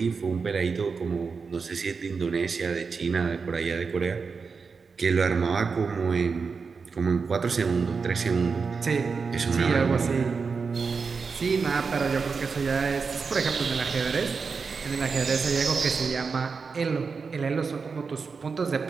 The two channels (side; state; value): left; quieter; 5.1 dB